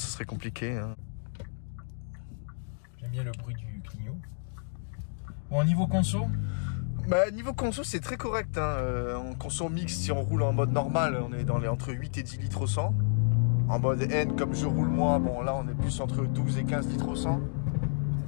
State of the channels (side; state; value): right; silent; digital silence